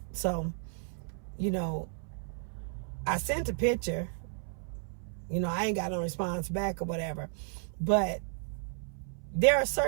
So, you know, I sent a picture. You know, I ain't got no response back or whatever. But there are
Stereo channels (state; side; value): silent; left; 56 dB below the other